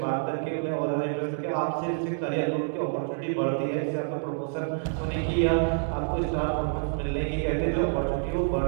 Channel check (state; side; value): silent; left; 60 dB below the other